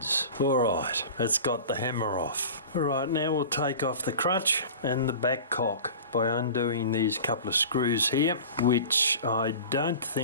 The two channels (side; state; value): both; inverted; correlation -0.37